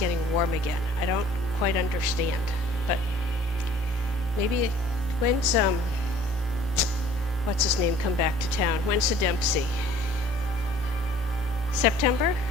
warm again. I don't quite understand, but maybe when's what's his name come back to town? When's the Dempsey? September?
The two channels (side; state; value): both; normal; correlation 0.53